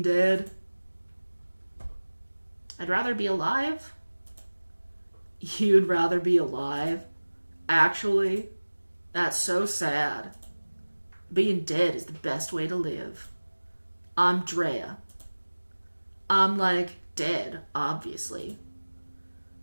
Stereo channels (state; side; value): inverted; both; correlation -1.00